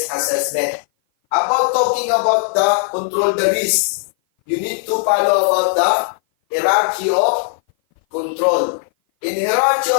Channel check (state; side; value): silent; right; 57 dB below the other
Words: assessment. About talking about the control the risk, you need to follow about the hierarchy of control. In hierarchy